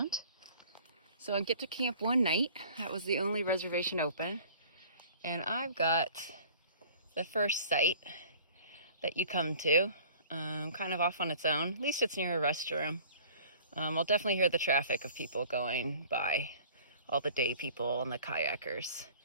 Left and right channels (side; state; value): both; inverted; correlation -0.49